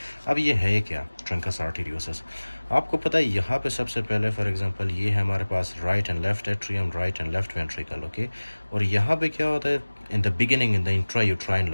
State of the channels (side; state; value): both; inverted; correlation -1.00